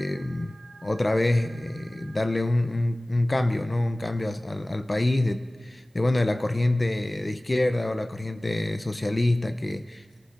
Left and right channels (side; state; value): both; normal; correlation 0.98